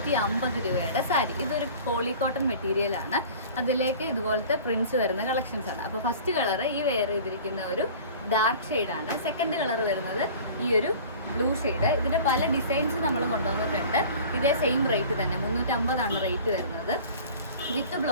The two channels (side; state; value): both; inverted; correlation -0.43